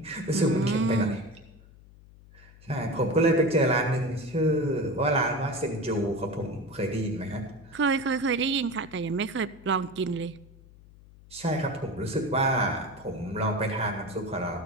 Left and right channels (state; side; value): noise; left; hum, 23 dB below the sound